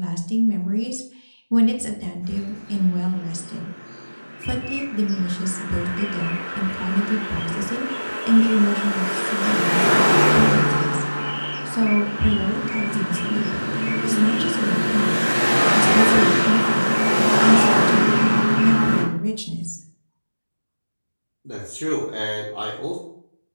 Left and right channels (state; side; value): inverted; both; correlation -1.00